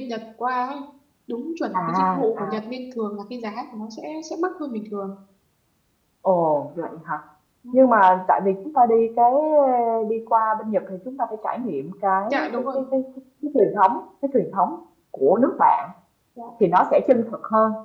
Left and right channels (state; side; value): identical; both; correlation 1.00